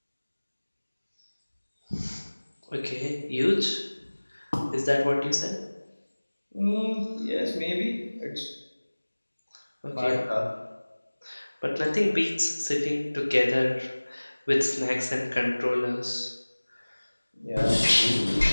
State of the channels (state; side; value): inverted; both; correlation -1.00